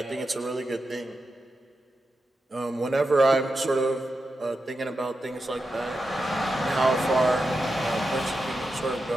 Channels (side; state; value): both; normal; correlation 0.89